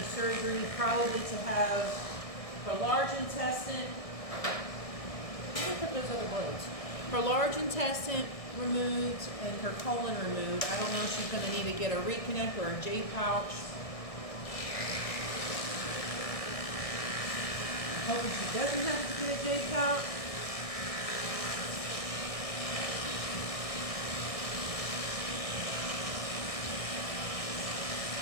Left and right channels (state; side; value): late; right; 1.6 ms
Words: surgery probably to have her large intestine. Where did I put those other bullets? Her large intestine removed and her colon removed. I don't know if she's going to need to get a reconnect or a J pouch. I'm hoping she doesn't have to get a J pouch.